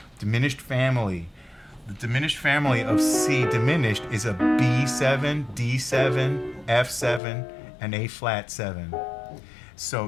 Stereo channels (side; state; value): right; drops out; at 7.2 s